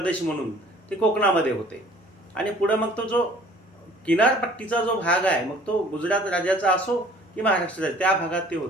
म्हणून ते कोकणामध्ये होते. आणि पुढं मग तो जो किनारपट्टीचा जो भाग आहे, मग तो गुजरात राज्याचा असो की महाराष्ट्राचा, त्या भागात ते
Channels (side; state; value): both; normal; correlation 0.52